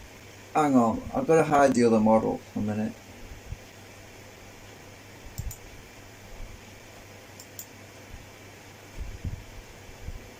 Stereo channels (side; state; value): both; identical; correlation 1.00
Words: Hang on, I've got to hide the other model for a minute.